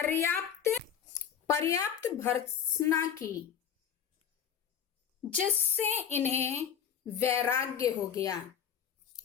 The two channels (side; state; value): right; quieter; 8.2 dB